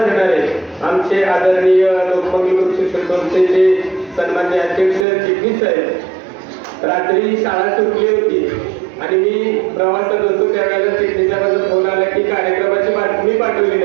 आमचे आदरणीय लोकमंगल ग्रुप शिक्षण संस्थेचे सन्मान्य अध्यक्ष चिटणीस साहेब. रात्री शाळा सुटली होती आणि मी प्रवासात होतो त्यावेळेला चिटणीचा माझा फोन आला की कार्यक्रमाची बातमी पाठवली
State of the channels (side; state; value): left; drops out; at 5.1 s